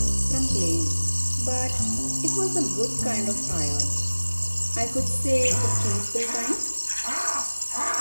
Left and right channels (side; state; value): both; inverted; correlation -1.00